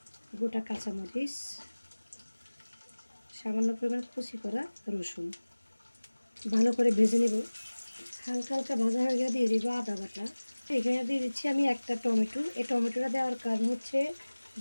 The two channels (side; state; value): both; inverted; correlation -1.00